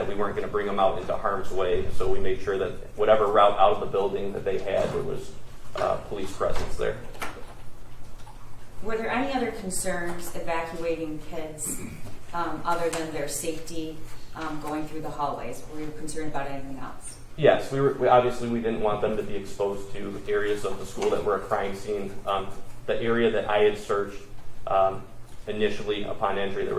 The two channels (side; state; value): both; identical; correlation 1.00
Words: we weren't going to bring them out into harm's way, so we made sure that whatever route out of the building that they had, there was police presence there. Were there any other concerns evacuating kids other than their safety going through the hallways? Were you concerned about anything else? Yes, we obviously we didn't want them to be exposed to areas of the school that were a crime scene. The area that I had searched initially upon entry,